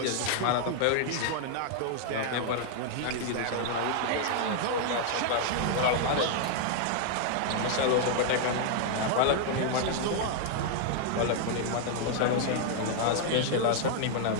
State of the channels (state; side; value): different; both; correlation 0.00